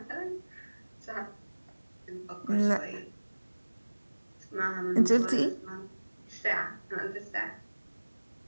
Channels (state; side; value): inverted; both; correlation -1.00